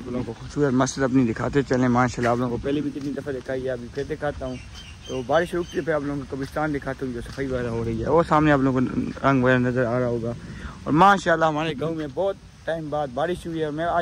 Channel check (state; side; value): identical; both; correlation 1.00